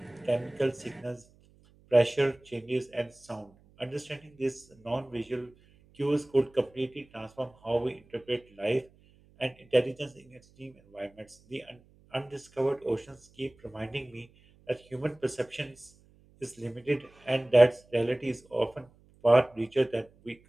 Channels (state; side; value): noise; right; hum, 29 dB below the sound